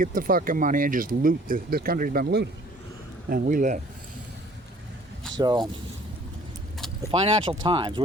the fucking money, and just loot. This country's been looted. And we live. So, the Financial Times,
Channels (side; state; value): both; normal; correlation 0.54